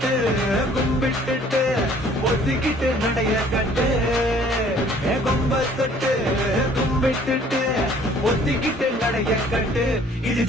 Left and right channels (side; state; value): both; normal; correlation 0.56